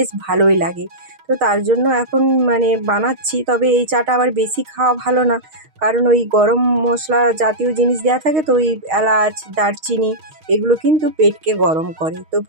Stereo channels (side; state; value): left; late; 6.4 ms